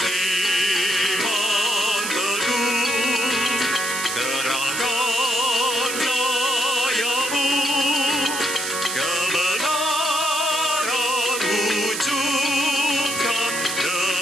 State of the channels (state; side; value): noise; right; hiss, 4 dB below the sound